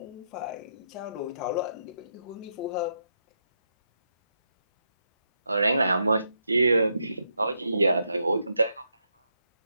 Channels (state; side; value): inverted; both; correlation -0.80